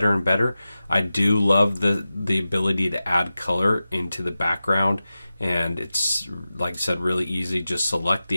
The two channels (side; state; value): both; inverted; correlation -0.94